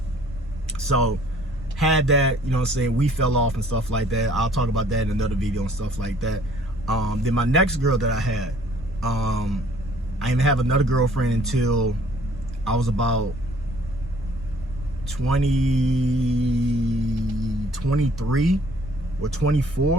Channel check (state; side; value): normal; both; correlation 0.58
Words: So had that, you know what I'm saying? We fell off and stuff like that. I'll talk about that in another video and stuff like that. Then my next girl that I had, I didn't have another girlfriend until I was about 23 or